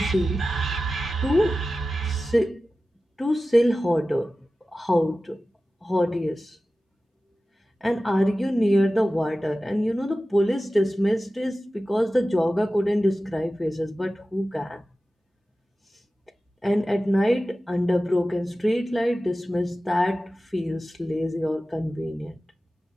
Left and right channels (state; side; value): normal; both; correlation 0.95